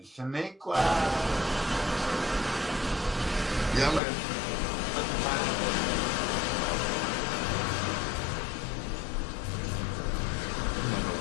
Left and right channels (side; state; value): right; drops out; at 4.0 s